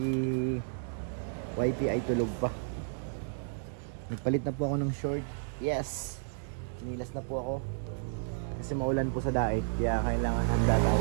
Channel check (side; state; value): left; silent; digital silence